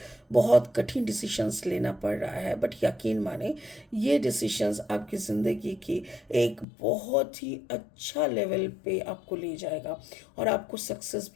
बहुत कठिन डिसीशंस लेना पड़ रहा है, बट यकीन माने ये डिसीशंस आपकी ज़िंदगी की एक बहुत ही अच्छा लेवल पे आपको ले जाएगा, और आपको सक्सेस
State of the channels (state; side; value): drops out; right; at 6.7 s